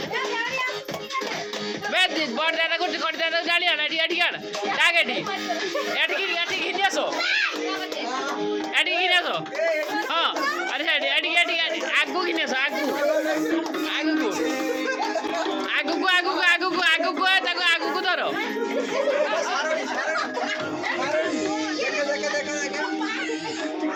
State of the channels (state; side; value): identical; both; correlation 1.00